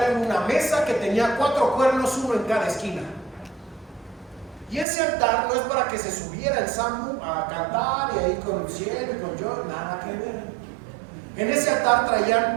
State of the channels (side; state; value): left; drops out; at 4.9 s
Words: era una mesa que tenía 4 cuernos, uno en cada esquina. Y ese altar no es para que se subiera el Sambu a cantar y ahí con el cielo y con yo, nada que ver. En ese altar